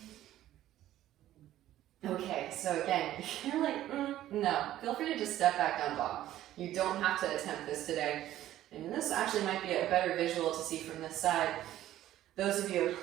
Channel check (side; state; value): left; quieter; 13.4 dB